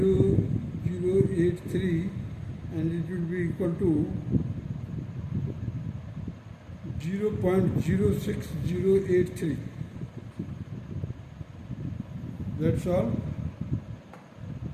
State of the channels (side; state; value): both; identical; correlation 1.00